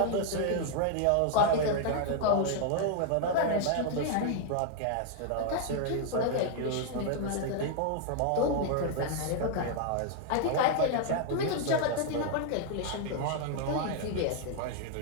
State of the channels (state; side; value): different; both; correlation 0.00